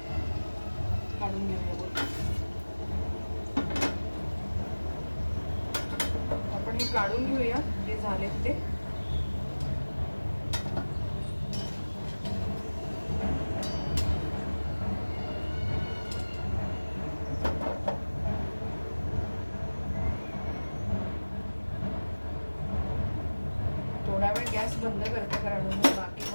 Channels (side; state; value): both; inverted; correlation -1.00